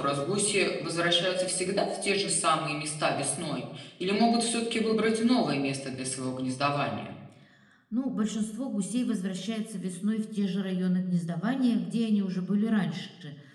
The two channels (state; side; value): identical; both; correlation 1.00